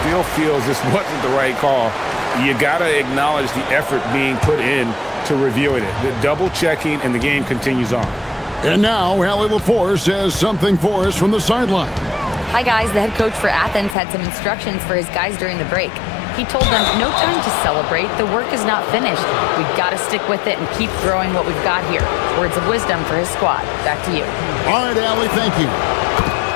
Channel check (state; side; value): drops out; right; at 14.0 s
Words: feels this wasn't the right call, you got to acknowledge the effort being put in to reviewing it. The double checking, and the game continues on. And now, Allie LaForce has something for us from the sideline. Hi, guys. The head coach for Athens had some instructions for his guys during the break. He told them, no time to celebrate. The work is not finished. We've got to stick with it and keep growing what we've got here. Words of wisdom for his squad. Back to you. All right, Allie, thank you.